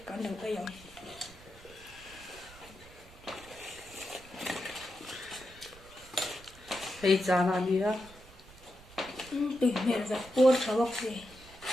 kan lo ai yong. Hey chana nia. Tui mer za por thawak se.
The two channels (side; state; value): right; noise; rumble, 21 dB below the sound